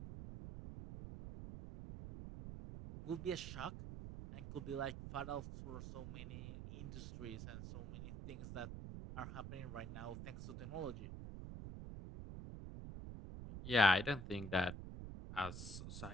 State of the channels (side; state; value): right; noise; rumble, 8 dB below the sound